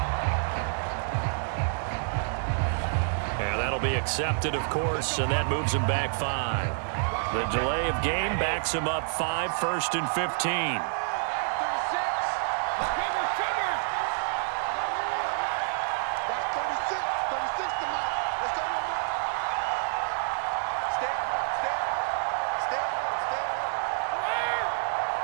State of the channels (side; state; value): left; silent; 59 dB below the other